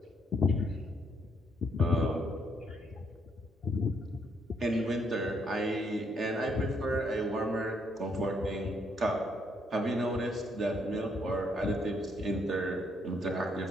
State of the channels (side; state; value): both; normal; correlation 0.72